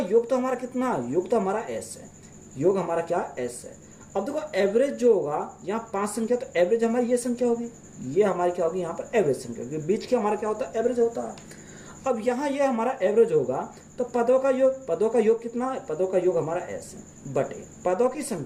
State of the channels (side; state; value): both; identical; correlation 1.00